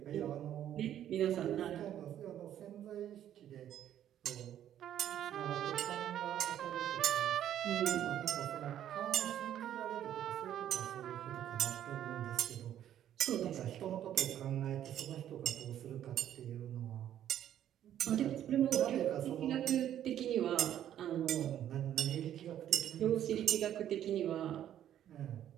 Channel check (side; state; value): left; quieter; 11.0 dB